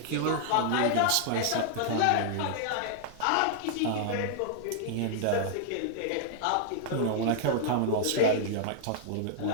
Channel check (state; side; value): different; both; correlation -0.01